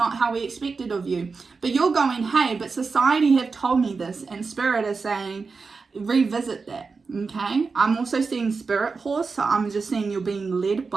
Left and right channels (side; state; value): left; quieter; 4.6 dB